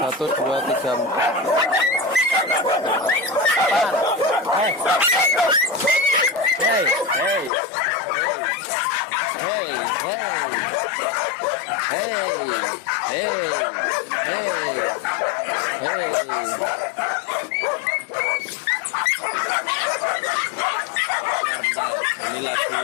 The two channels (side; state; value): right; drops out; at 7.5 s